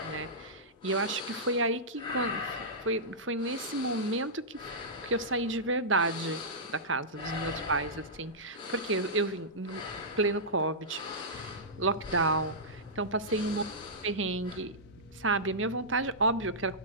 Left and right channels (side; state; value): both; normal; correlation -0.14